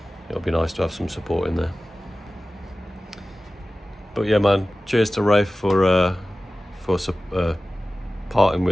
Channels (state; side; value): normal; both; correlation 0.96